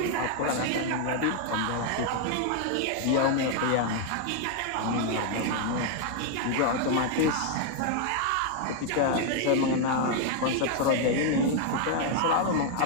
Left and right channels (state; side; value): different; both; correlation 0.00